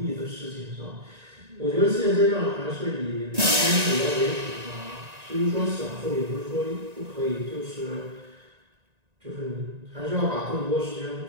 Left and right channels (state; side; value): late; left; 1.9 ms